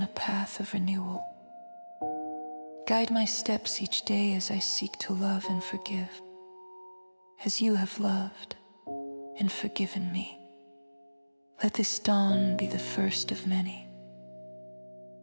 a path of renewal. Guide my steps each day as I seek to love and forgive, as you have loved and forgiven me. Let this dawn be the first of many.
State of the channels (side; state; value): both; inverted; correlation -1.00